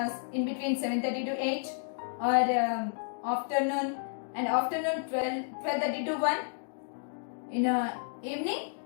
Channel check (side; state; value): right; silent; digital silence